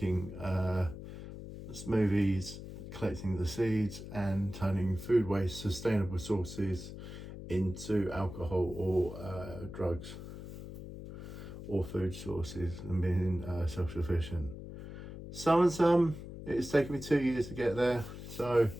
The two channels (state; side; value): noise; left; hum, 11 dB below the sound